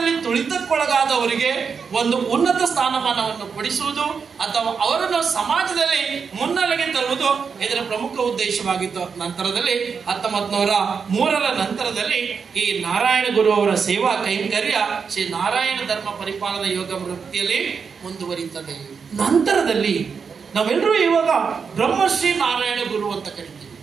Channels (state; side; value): quieter; left; 5.9 dB